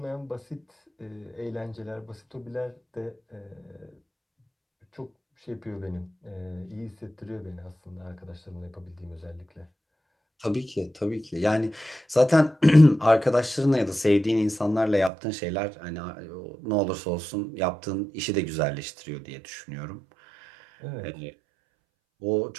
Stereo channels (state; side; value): drops out; left; at 15.1 s